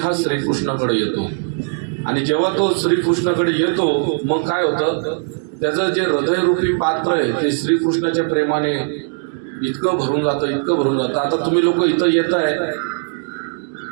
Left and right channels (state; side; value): silent; left; 65 dB below the other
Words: श्रीकृष्णाकडे येतो. आणि जेव्हा तो श्रीकृष्णाकडे येतो मग काय होतं, त्याचं जे हृदयरूपी पात्र आहे ते श्रीकृष्णाच्या प्रेमाने इतकं भरून जातं, इतकं भरून जातं. आता तुम्ही लोक इथं येत आहे,